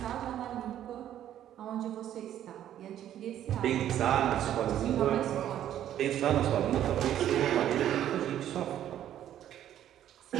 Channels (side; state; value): left; quieter; 11.3 dB